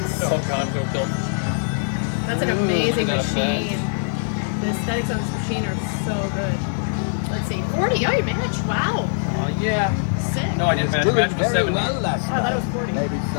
Oh god, don't kill. That's like an Ooh, amazing look at that machine. The aesthetics on this machine are so good. Let's see, 40. Oh, you matched. Wow. Oh, yeah. Sick. No, I didn't match. Doing Match was very 70. well last Oh, I thought it was night. 40. Maybe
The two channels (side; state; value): right; silent; digital silence